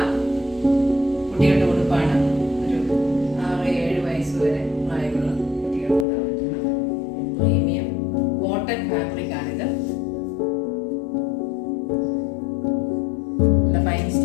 കുട്ടികളുടെ ഉടുപ്പാണ്. ഒരു 6-7 വയസ്സ് വരെ പ്രായമുള്ള കുട്ടികൾക്ക് ഇടാൻ പറ്റുന്ന പ്രീമിയം കോട്ടൺ ഫാബ്രിക്കാണിത്. നല്ല ഫൈൻ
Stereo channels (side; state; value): right; drops out; at 6.1 s